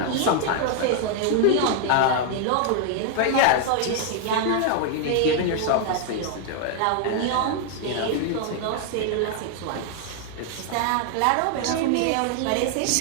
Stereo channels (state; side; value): different; both; correlation 0.00